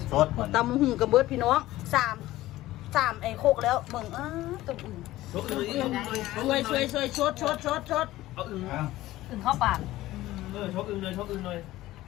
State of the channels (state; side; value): quieter; right; 16.3 dB